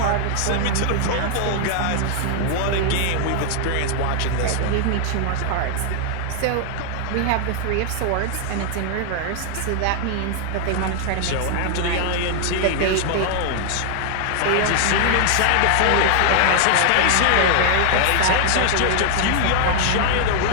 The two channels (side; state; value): both; different; correlation 0.00